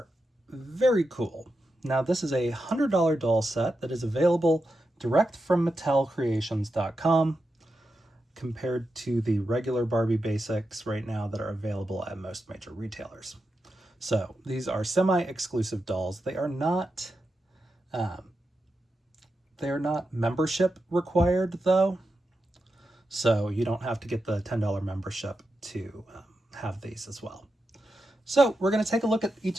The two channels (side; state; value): both; normal; correlation 0.88